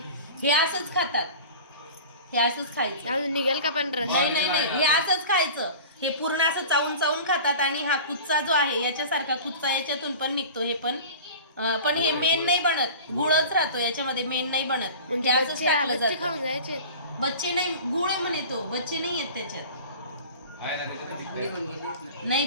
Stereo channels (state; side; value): inverted; both; correlation -0.37